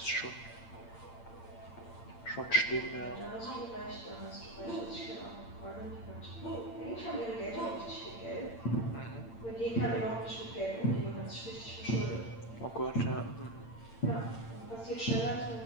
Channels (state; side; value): late; right; 8.8 ms